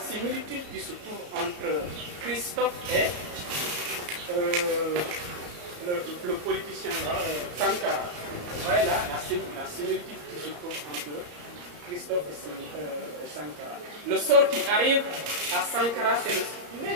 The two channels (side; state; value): left; late; 34 ms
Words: qui se trouve entre Christophe et le politicien là, Sankara. Vous voyez là la similitude qui se trouve entre Christophe et Sankara. Le sort qui arrive à Sankara, c'est le